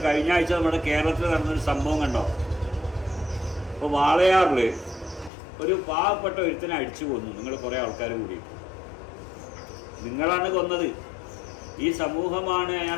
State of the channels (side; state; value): right; drops out; at 5.3 s